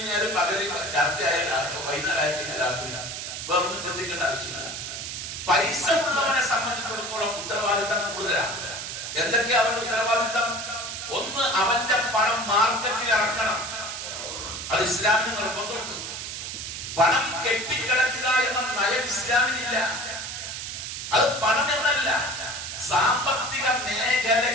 പകല്, രാത്രി ആയാലും വൈകുന്നേരം ആയി കഴിഞ്ഞാൽ രാത്രി, വേറൊന്നും ചിന്തിക്കേണ്ട ആവശ്യമില്ല. പൈസ ഉള്ളവനെ സംബന്ധിച്ചിടത്തോളം ഉത്തരവാദിത്തം കൂടുതലാണ്. എന്തൊക്കെയാ അവന്റെ ഉത്തരവാദിത്തം? ഒന്ന്, അവന്റെ പണം മാർക്കറ്റിൽ ഇറക്കണം. അത് ഇസ്ലാമിന് നിർബന്ധമുണ്ട്. പണം കെട്ടിക്കിടക്കുക എന്ന നയം ഇസ്ലാമിനില്ല. അത് പണം എന്നല്ല, സാമ്പത്തിക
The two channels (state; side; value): noise; right; hiss, 6 dB below the sound